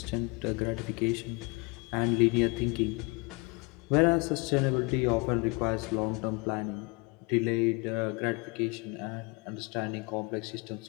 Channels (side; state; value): right; quieter; 28.6 dB